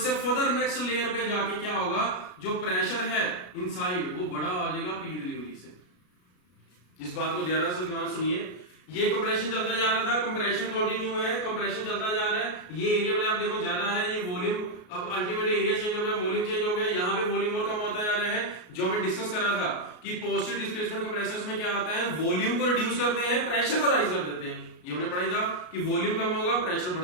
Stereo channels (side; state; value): right; late; 33 ms